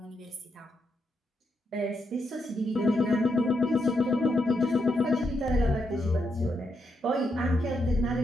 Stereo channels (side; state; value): both; normal; correlation 0.81